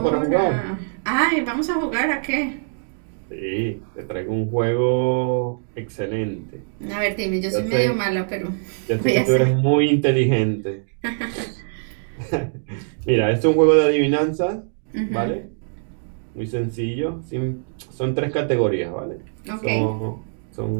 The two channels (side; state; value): left; silent; digital silence